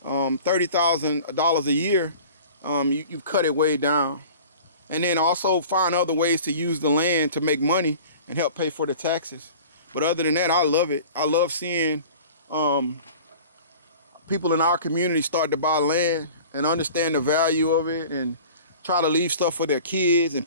$30,000 a year, you've cut it way down. And then also find other ways to use the land to make money and help pay for the taxes. But other than that, I love it. I love seeing people in our community start to buy land and understand the value of it, and try to leave stuff for their kids and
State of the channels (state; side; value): inverted; both; correlation -0.42